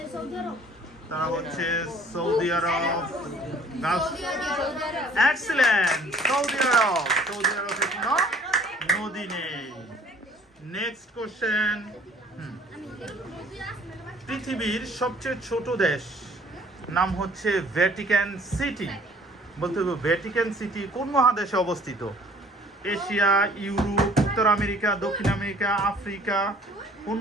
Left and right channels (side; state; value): both; normal; correlation 0.55